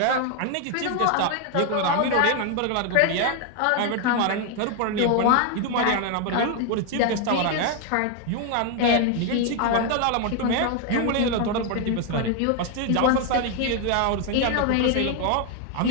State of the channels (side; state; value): both; different; correlation 0.01